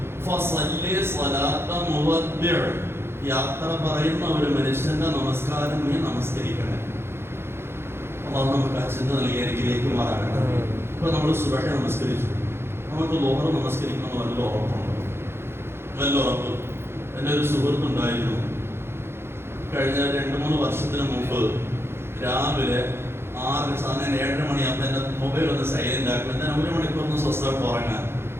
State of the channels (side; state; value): left; late; 0.12 ms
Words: യാത്ര പറയുന്ന ഒരു മനുഷ്യന്റെ നമസ്കാരം നീ നമസ്കരിക്കണം. അല്ലാഹു നമുക്ക് അച്ഛൻ നൽകി അനുഗ്രഹിക്കുമാറാകട്ടെ. ഇപ്പൊ നമ്മൾ സുബഹി നമസ്കരിച്ചു, നമുക്ക് ലോഹർ നമസ്കരിക്കണം വല്ല ഉറപ്പുണ്ടോ? വല്ല ഉറപ്പ്. എൻ്റെ ഒരു സുഹൃത്തുണ്ടായിരുന്നു, കഴിഞ്ഞ 2-3 വർഷത്തിന് മുമ്പ് രാവിലെ 6 സാധനം 7 മണിയാകുമ്പോൾ എൻ്റെ മൊബൈൽ ഒന്ന് സൈലന്റ് ആക്കും. എന്നാൽ 1 മണിക്കൂർ സ്വസ്ഥമായിട്ട് ഉറങ്ങാൻ.